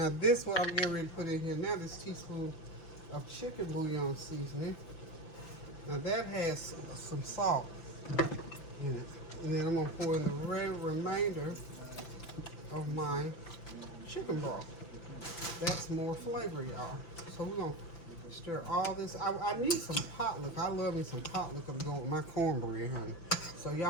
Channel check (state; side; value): late; right; 5.9 ms